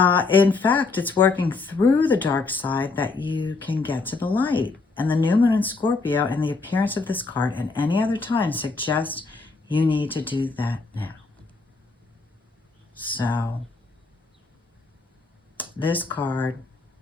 In fact, it's working through the dark side that you can get to the light. And the new moon in Scorpio and the appearance of this card and any other time suggest you need to do that now. So this card,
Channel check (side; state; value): right; quieter; 4.0 dB